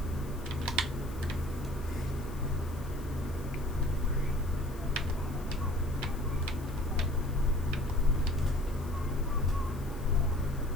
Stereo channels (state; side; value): noise; left; hiss, 21 dB below the sound